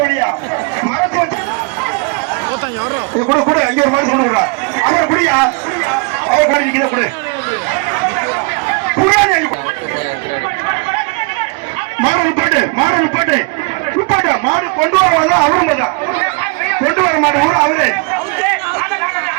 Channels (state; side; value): quieter; left; 31.8 dB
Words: கூட அங்கே ஒரு மாதிரி சொல்லுடா அவர் குடியா அவர் காடி நிக்கிற கூட மாடு பாட்டு மாடு கொண்டு வருவாங்க அவரும் கொண்டு வர மாடு கூட அவரு